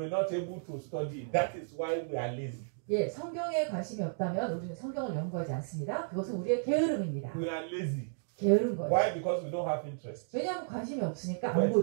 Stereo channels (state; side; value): silent; left; digital silence